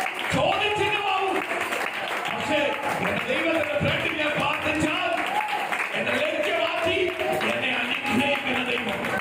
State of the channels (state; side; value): identical; both; correlation 1.00